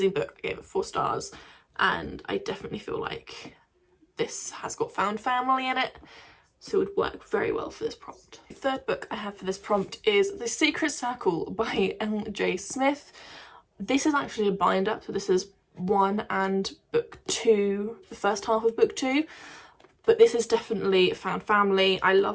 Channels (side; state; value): both; identical; correlation 1.00